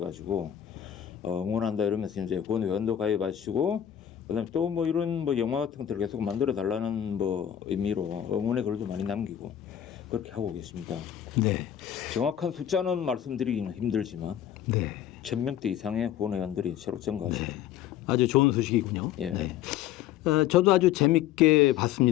응원한다 이러면서 이제 후원회원도 가입하시고 그다음에 또 뭐 이런 뭐 영화 같은 것들을 계속 만들어 달라는 뭐 의미로 응원의 글도 많이 남기고 그렇게 하고 계십니다. 네. 정확한 숫자는 말씀드리기는 힘들지만 네. 1000명대 이상의 후원회원들이 새로 증가하십니다. 아주 좋은 소식이군요. 예. 네. 저도 아주 재밌게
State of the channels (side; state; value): right; quieter; 10.7 dB